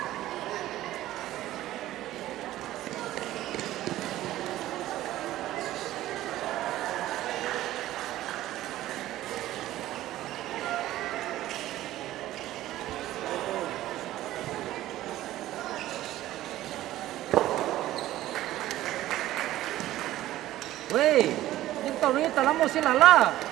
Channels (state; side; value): quieter; left; 14.7 dB